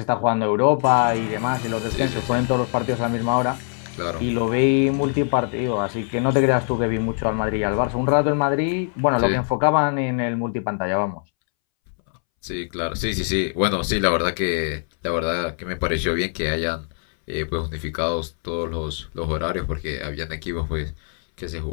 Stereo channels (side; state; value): right; silent; 64 dB below the other